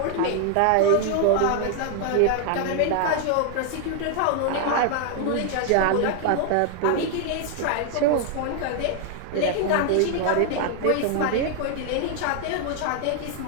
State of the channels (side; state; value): both; different; correlation 0.00